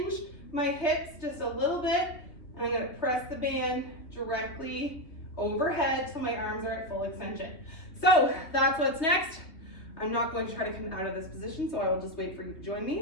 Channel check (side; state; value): right; late; 3.2 ms